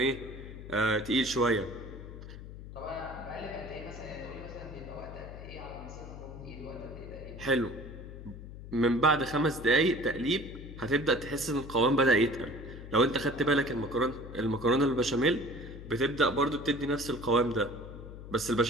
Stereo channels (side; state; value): left; noise; hum, 12 dB below the sound